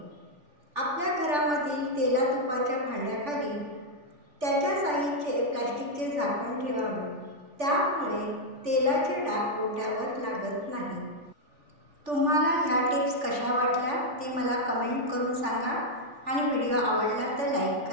आपल्या घरामधील तेला तुपाच्या भांड्याखाली त्याच्या साईजचे प्लास्टिकचे झाकण ठेवावे, त्यामुळे तेलाचे डाग ओट्यावर लागत नाही। तुम्हाला ह्या टिप्स कशा वाटल्या ते मला कमेंट करून सांगा आणि व्हिडिओ आवडला तर लाईक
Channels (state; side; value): late; left; 3.4 ms